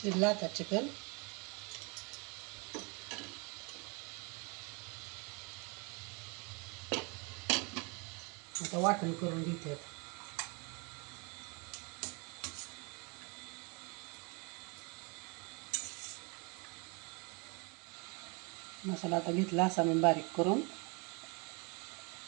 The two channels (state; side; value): quieter; left; 31.1 dB